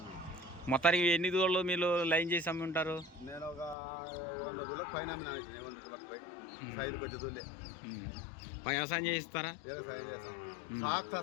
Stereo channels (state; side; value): drops out; right; at 3.8 s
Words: మొత్తానికి ఎన్ని దూడలు మీరు లైన్ చేసి అమ్మి ఉంటారు? నేను ఒక 100 పైన వ్యవసాయం చేయిస్తారా?